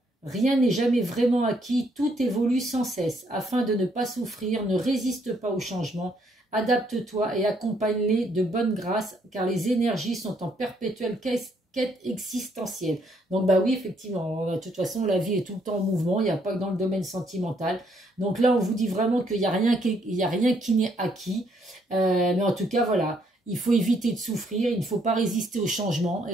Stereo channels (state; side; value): normal; both; correlation 0.70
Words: Rien n'est jamais vraiment acquis, tout évolue sans cesse. Afin de ne pas souffrir, ne résiste pas au changement, adapte-toi et accompagne-les de bonne grâce, car les énergies sont en perpétuelle quête existentielle. Donc bah oui, effectivement, de toute façon, la vie est tout le temps en mouvement, il n'y a pas que dans le domaine sentimental. Donc là, on vous dit vraiment qu'il n'y a rien qui n'est acquis. Mais en tout cas, voilà. Il faut éviter de souffrir, il ne faut pas résister au changement,